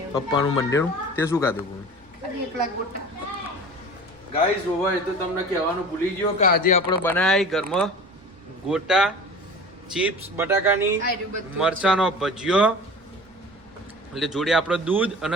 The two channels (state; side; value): noise; right; rumble, 29 dB below the sound